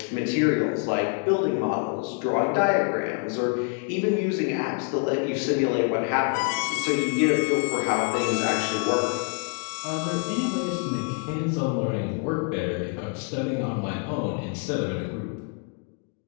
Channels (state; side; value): quieter; right; 38.1 dB